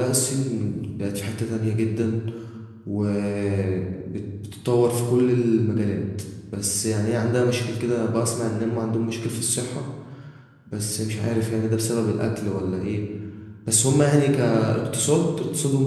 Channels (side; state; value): both; identical; correlation 1.00